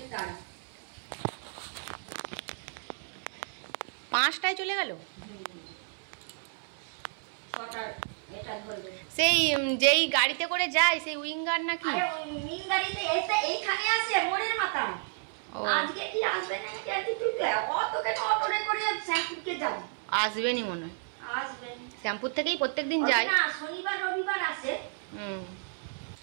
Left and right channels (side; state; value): left; silent; 57 dB below the other